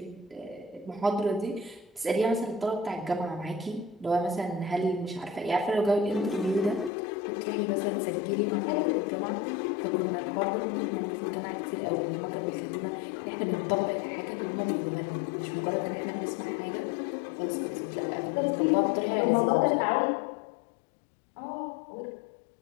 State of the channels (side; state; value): right; drops out; at 6.9 s